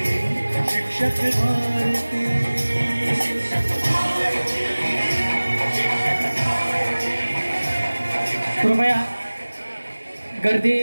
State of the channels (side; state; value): both; inverted; correlation -1.00